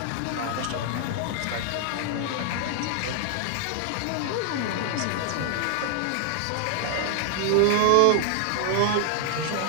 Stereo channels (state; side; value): different; both; correlation 0.00